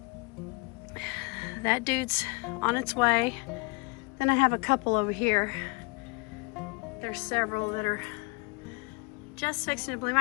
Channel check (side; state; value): right; quieter; 29.7 dB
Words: That dude's on its way. Then I have a couple over here. There's several that are just fixing to bloom.